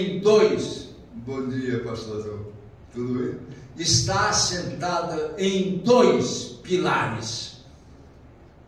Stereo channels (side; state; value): both; identical; correlation 1.00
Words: dois. Bom dia, pastor. Tudo bem? Está assentada em dois pilares: